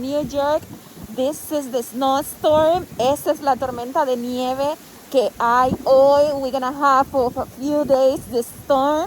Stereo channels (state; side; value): identical; both; correlation 1.00